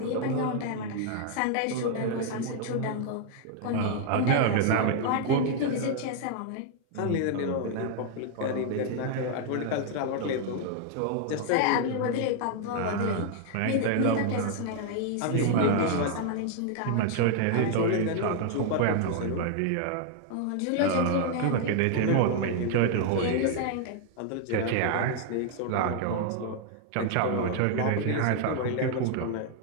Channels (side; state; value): both; different; correlation 0.00